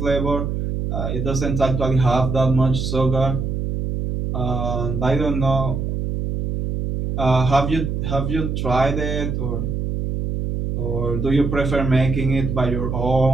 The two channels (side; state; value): right; noise; hum, 2 dB below the sound